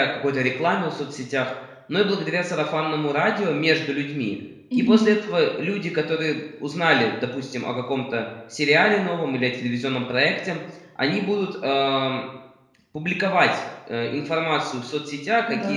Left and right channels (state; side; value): identical; both; correlation 1.00